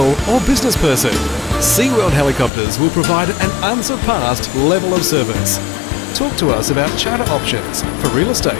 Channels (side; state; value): right; drops out; at 2.5 s